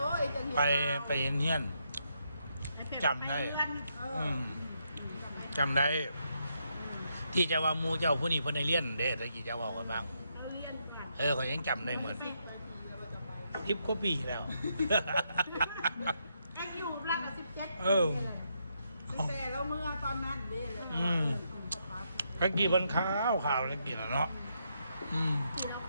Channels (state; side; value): inverted; both; correlation -0.79